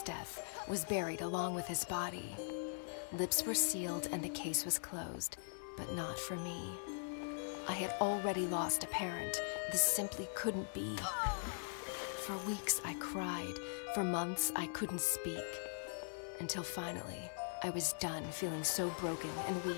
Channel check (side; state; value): right; silent; 50 dB below the other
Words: death was buried along with his body. Lips were sealed and the case was closed, but not for me. I had already lost a parent. This simply couldn't be. For weeks I cried. For months I couldn't speak. Until finally, I was done feeling so broken and